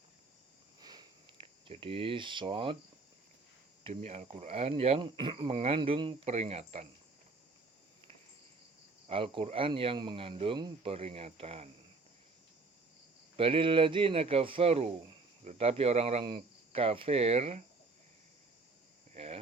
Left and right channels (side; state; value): left; quieter; 3.8 dB